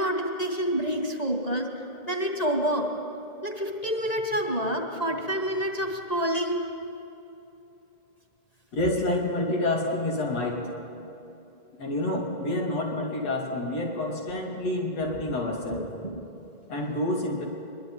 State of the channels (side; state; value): right; late; 1.9 ms